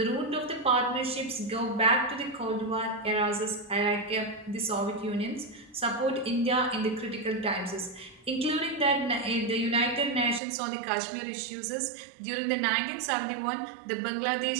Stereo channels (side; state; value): left; drops out; at 10.4 s